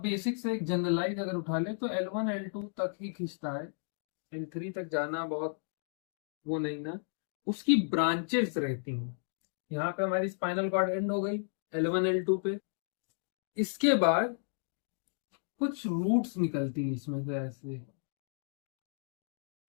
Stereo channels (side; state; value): right; silent; digital silence